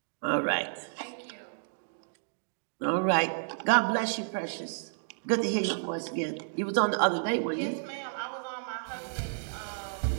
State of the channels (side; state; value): left; silent; digital silence